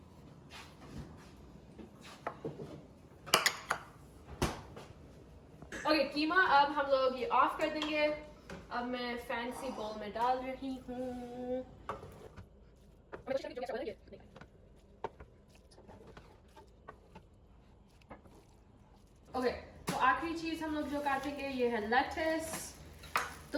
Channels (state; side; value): identical; both; correlation 1.00